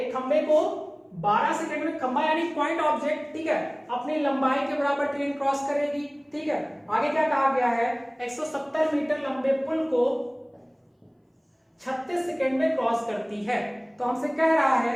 खंबे को 12 सेकंड में, खंबा यानी पॉइंट ऑब्जेक्ट, ठीक है, अपनी लंबाई के बराबर ट्रेन क्रॉस करेगी। ठीक है, आगे क्या कहा गया है, 170 मीटर लंबे पुल को 36 सेकंड में क्रॉस करती है। तो हमसे कह रहा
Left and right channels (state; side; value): identical; both; correlation 1.00